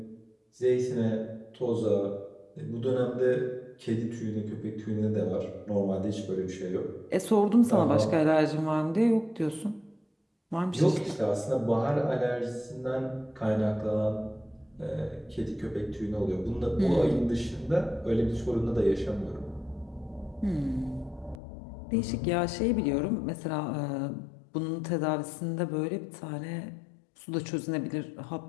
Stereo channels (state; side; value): drops out; right; at 21.4 s